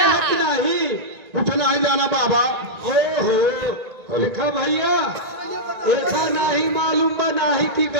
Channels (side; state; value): left; late; 1.9 ms